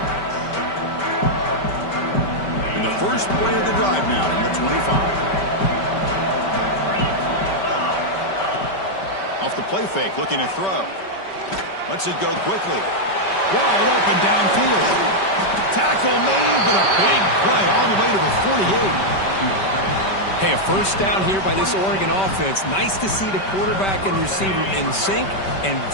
And the first play of the drive now from the 25. Off the play fake, looking to throw. Lets it go quickly. Wide open downfield. Tackle made, but a big play all the way to the 48. Hey, a first down here by this Oregon offense. Nice to see the quarterback and receiver in sync and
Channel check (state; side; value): late; right; 5.2 ms